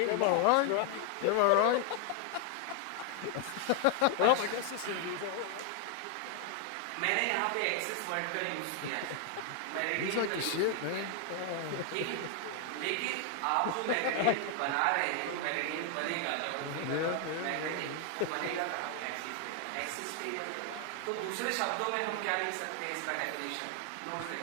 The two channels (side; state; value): both; different; correlation 0.00